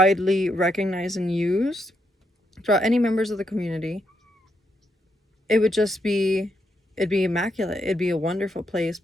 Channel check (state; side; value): normal; both; correlation 0.79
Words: recognized and used throughout any members of the community, it would just be it'd be immaculate. It'd be a wonderful place,